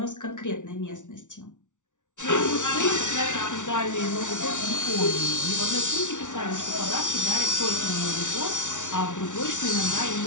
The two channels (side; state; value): right; late; 0.86 ms